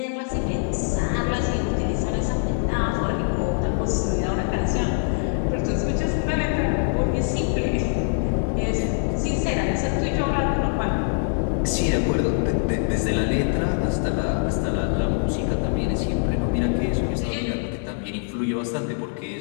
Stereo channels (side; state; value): right; silent; 59 dB below the other